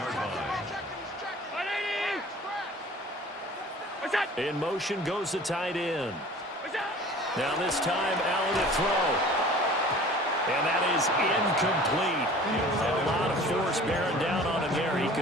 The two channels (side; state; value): both; normal; correlation 0.45